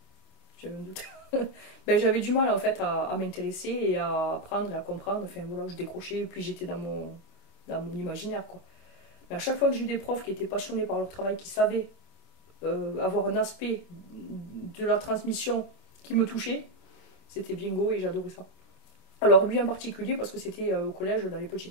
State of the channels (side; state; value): right; late; 27 ms